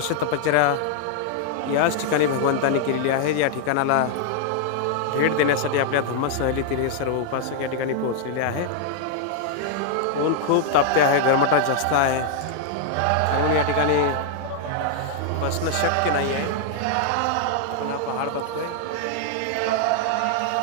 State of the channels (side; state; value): both; different; correlation 0.00